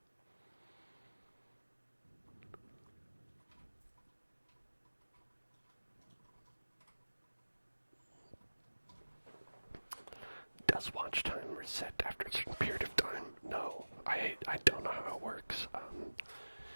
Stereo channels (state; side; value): inverted; both; correlation -1.00